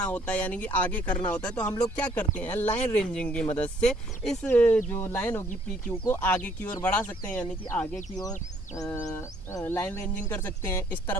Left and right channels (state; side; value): normal; both; correlation 0.64